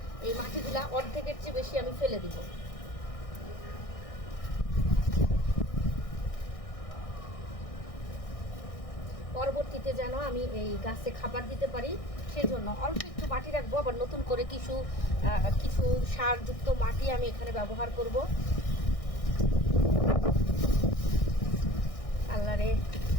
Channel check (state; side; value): late; right; 1.6 ms